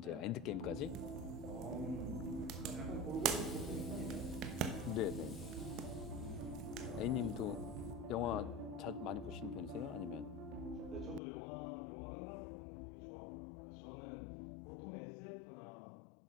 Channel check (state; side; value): drops out; right; at 11.2 s